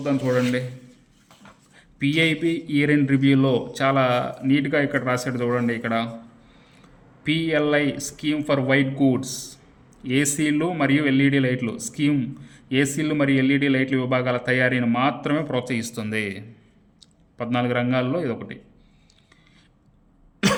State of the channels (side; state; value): both; identical; correlation 1.00